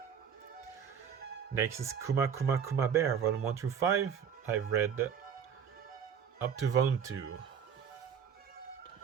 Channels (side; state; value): left; quieter; 7.6 dB